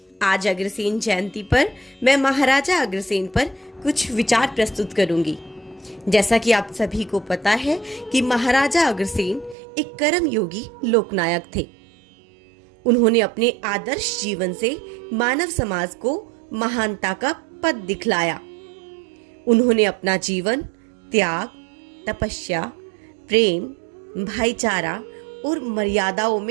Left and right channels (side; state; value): left; drops out; at 9.6 s